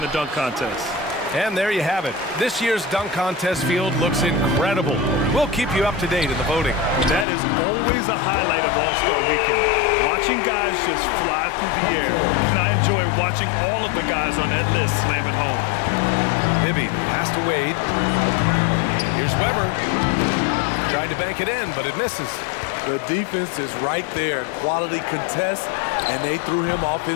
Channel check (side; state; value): right; drops out; at 7.2 s